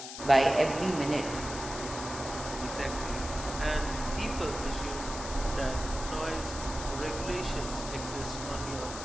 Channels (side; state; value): left; noise; hiss, 9 dB below the sound